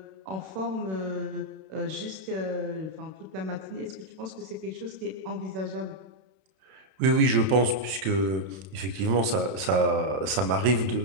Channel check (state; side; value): late; left; 32 ms